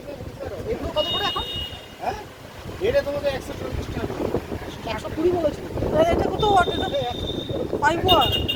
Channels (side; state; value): both; identical; correlation 1.00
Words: তো বুঝতে পারো। এগুলো কত করে এখন? হ্যাঁ এটা তোমাদের 140 টাকা। 120 বলেছি। এটা কত ওয়াট? এটা 5 ওয়াট।